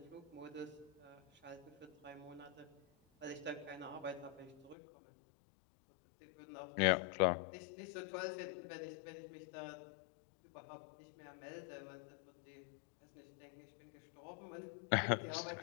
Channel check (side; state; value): right; drops out; at 4.8 s